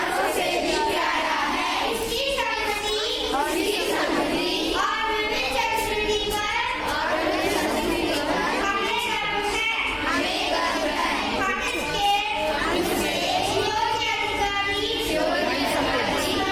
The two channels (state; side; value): identical; both; correlation 1.00